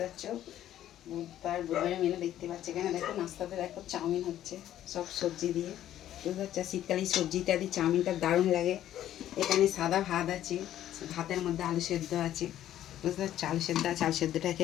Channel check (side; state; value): right; quieter; 12.1 dB